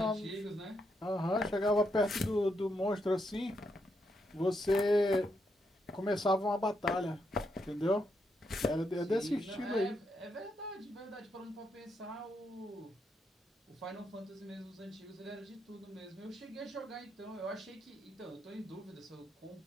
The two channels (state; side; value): normal; both; correlation 0.80